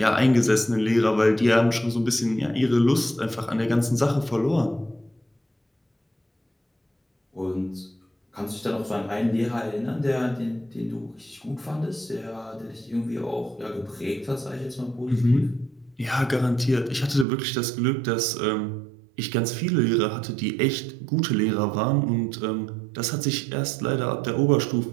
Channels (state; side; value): drops out; left; at 17.2 s